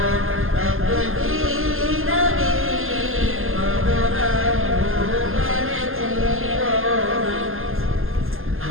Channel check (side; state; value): left; late; 0.60 ms